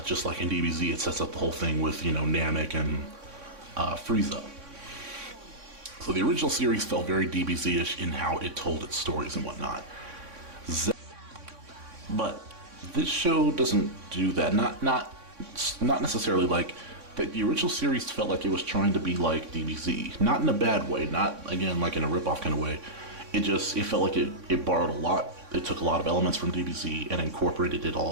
Just like in DBZ, it sets up the whole thing with, Namek and Frieza. So the original series felt very DBZ-ish in how it told its stories and whatnot. But this show doesn't do that. Not necessarily like that. The original series felt like it was trying to be like DBZ, not in a bad way, not again like in a ripoff kind of way. It felt like it borrowed a lot. It took a lot of elements from DBZ and incorporated it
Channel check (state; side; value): late; left; 3.6 ms